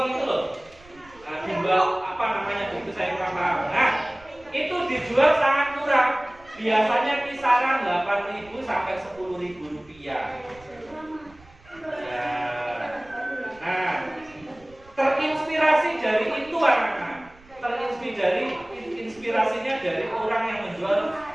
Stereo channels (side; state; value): right; noise; rumble, 26 dB below the sound